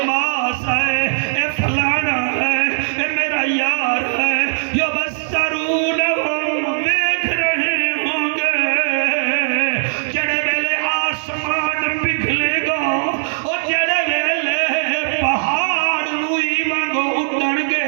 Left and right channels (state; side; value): silent; left; digital silence